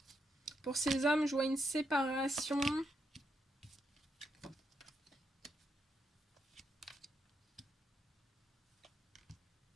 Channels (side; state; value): both; normal; correlation 0.81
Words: Pour ces hommes, je vois une séparation.